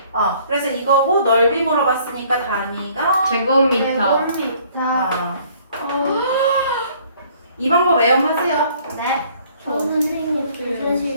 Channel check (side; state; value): both; inverted; correlation -0.59